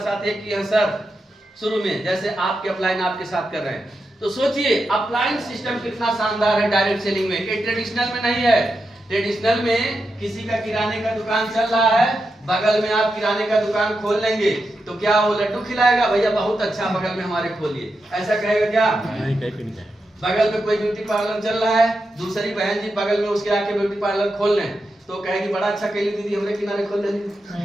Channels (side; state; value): both; normal; correlation 0.87